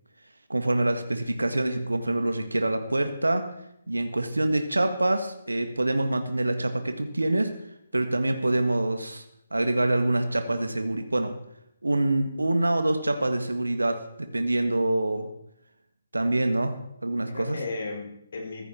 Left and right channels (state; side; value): inverted; both; correlation -0.96